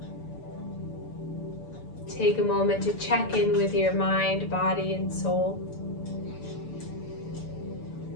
Take a moment to check in with your mind, body, and soul.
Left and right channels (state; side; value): late; right; 6.9 ms